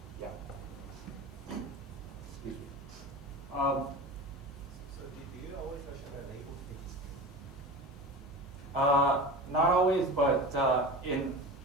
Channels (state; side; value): normal; both; correlation 0.31